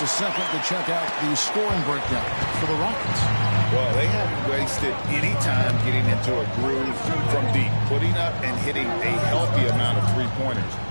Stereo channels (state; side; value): inverted; both; correlation -1.00